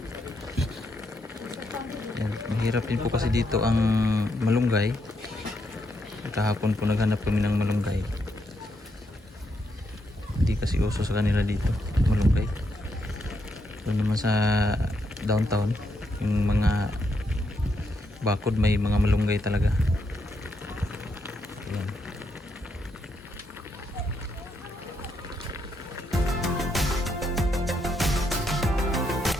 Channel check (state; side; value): normal; both; correlation 0.79